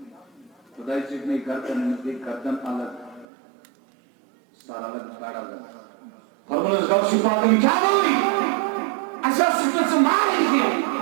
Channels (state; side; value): drops out; left; at 3.2 s